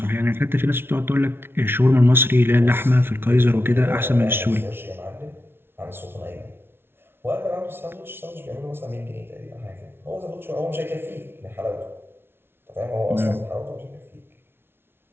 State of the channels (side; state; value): left; late; 0.11 ms